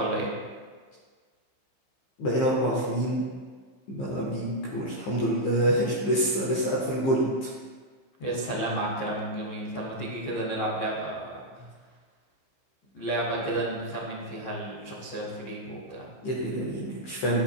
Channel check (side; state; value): right; late; 15 ms